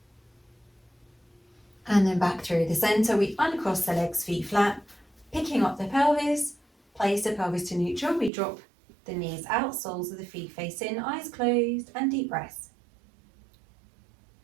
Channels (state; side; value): drops out; left; at 8.3 s